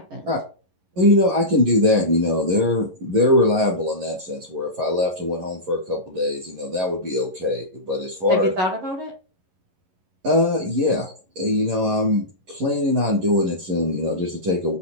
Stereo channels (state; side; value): late; left; 11 ms